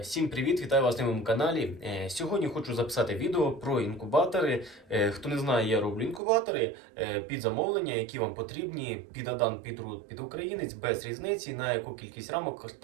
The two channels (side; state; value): left; drops out; at 6.2 s